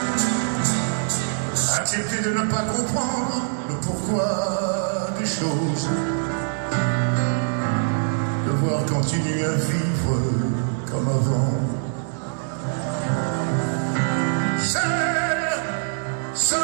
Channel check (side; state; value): left; silent; digital silence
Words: Accepter de ne pas comprendre le pourquoi des choses. Devoir continuer à vivre comme avant. Seul,